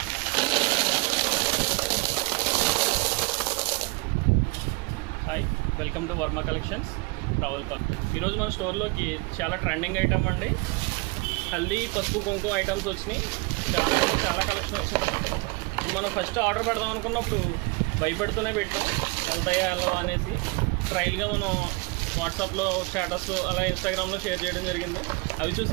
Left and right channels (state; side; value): quieter; left; 27.2 dB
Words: Hi, welcome to Varma collections Ravulapalli. ఈరోజు మన స్టోర్లోకి చాలా ట్రెండింగ్ ఐటమ్ అండి. హల్దీ పసుపు కుంకుమ ఐటమ్స్ వచ్చినాయి. చాలా కలెక్షన్ వచ్చింది. మనం ఫస్ట్ ఆర్డర్ పెడదాం అనుకున్నప్పుడు భయపడుతూనే పెట్టాం, వెళ్తాయా వెళ్ళవా అనేసి. ట్రయల్గా మనం వాట్సాప్లో స్టేటస్ అలా ఇన్స్టాగ్రామ్లో షేర్ చేయడం జరిగింది. అవి